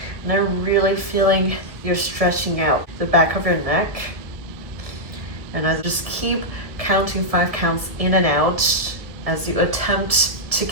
And then really feeling you're stretching out the back of your neck. And I just keep counting 5 counts in and out as you attempt to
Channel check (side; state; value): left; late; 1.5 ms